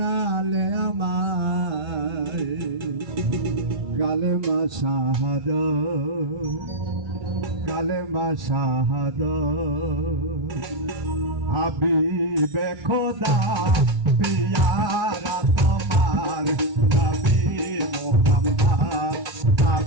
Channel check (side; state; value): left; late; 2.3 ms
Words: আমায় কালেমা শাহাদাত, কালেমা শাহাদাত। হাবিবে খোদা পিয়ারা তোমার নবী মুহাম্মদ,